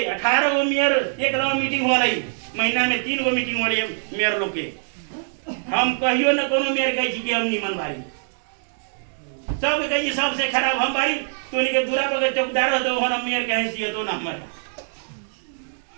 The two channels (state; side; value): silent; left; digital silence